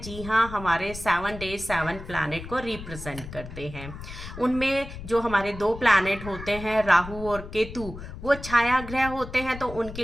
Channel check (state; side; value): noise; left; rumble, 12 dB below the sound